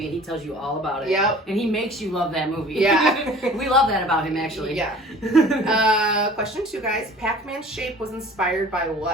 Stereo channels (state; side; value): normal; both; correlation 0.46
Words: and he tells you all about it. Yep. And he makes you love that movie. Yeah. We love that about him, actually. Yeah. Question 2, guys. Pac-Man's shape was inspired by